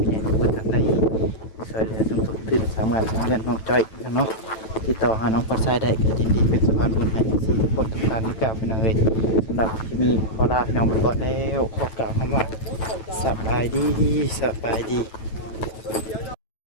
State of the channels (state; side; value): late; right; 9.2 ms